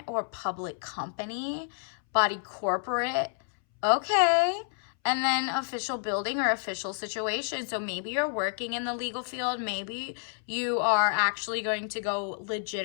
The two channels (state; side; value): silent; right; 58 dB below the other